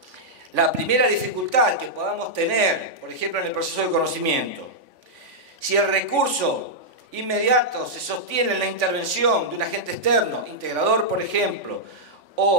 la primera dificultad que podamos tener, por ejemplo, en el proceso de conocimiento, si el recurso inmediato se sostiene en la intervención de un agente externo, integrador, por ejemplo,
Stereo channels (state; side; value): late; left; 3.5 ms